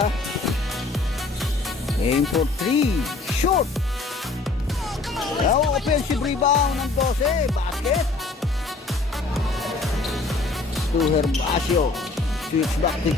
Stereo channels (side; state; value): right; quieter; 3.6 dB